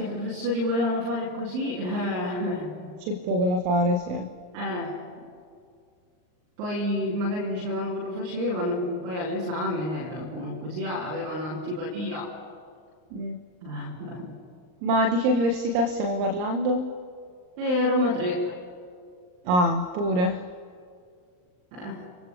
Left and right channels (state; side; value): late; left; 39 ms